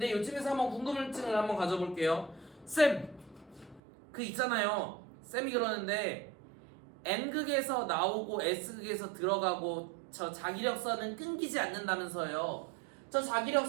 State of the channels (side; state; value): left; drops out; at 3.8 s